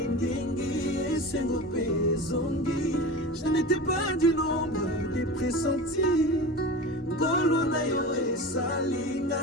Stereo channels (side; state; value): both; normal; correlation 0.30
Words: sengo pezongi. Je n'étais pas du nombre des pressentis. Golo na yo esali